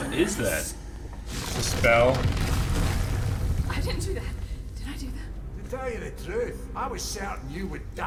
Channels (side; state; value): both; identical; correlation 1.00